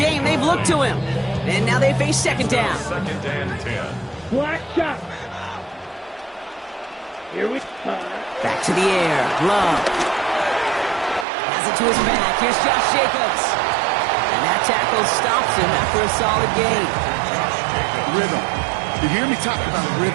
they've looked to him. And now they face second down. Black shot. Here we go. Back to the air. Love. Has it to his back. Here's Josh Jacobs. And that tackle stops him after a solid gain. Rhythm. You hear me talk about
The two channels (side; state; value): left; drops out; at 11.2 s